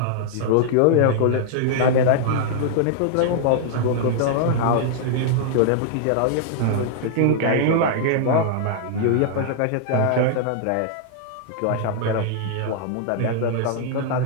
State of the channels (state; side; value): different; both; correlation -0.01